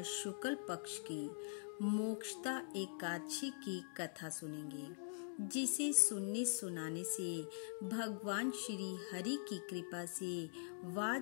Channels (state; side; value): silent; right; digital silence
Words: शुक्ल पक्ष की मोक्षदा एकादशी की कथा सुनेंगे, जिसे सुनने सुनाने से भगवान श्री हरि की कृपा से